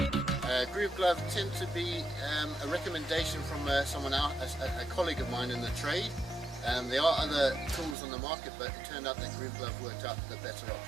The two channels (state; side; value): drops out; left; at 8.0 s